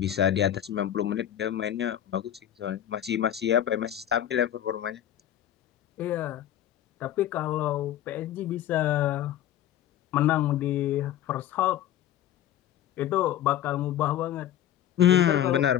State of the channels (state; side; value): quieter; right; 11.4 dB